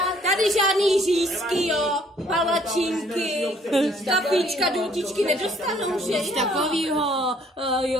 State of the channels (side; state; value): both; normal; correlation 0.62